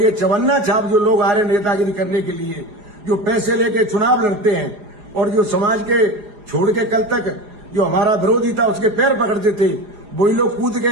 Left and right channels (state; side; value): late; left; 4.9 ms